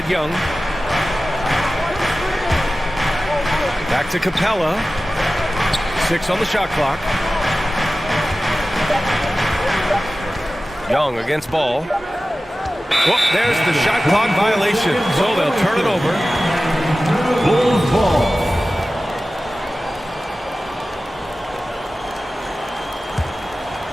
Young. Back to Capella. 6 on the shot clock. Young against Ball. Well, there's the shot clock violation, so they'll turn it over. Bulls ball.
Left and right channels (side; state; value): both; normal; correlation 0.96